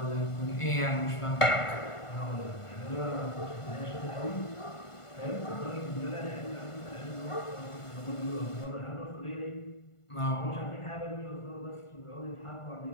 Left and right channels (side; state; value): right; late; 1.5 ms